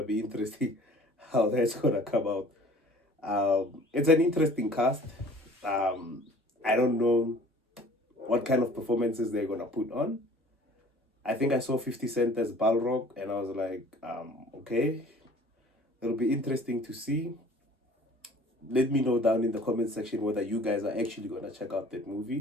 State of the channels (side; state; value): both; normal; correlation 0.50